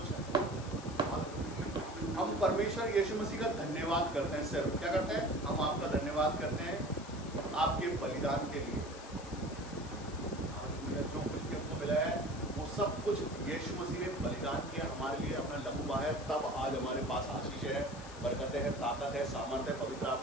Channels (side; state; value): left; noise; hiss, 17 dB below the sound